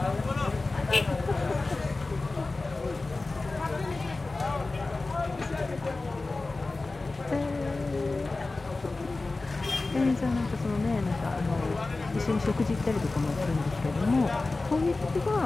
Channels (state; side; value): quieter; right; 3.4 dB